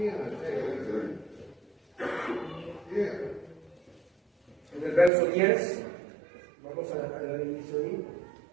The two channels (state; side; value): drops out; left; at 5.1 s